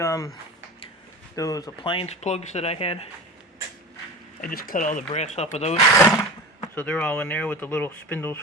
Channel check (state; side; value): normal; both; correlation 0.32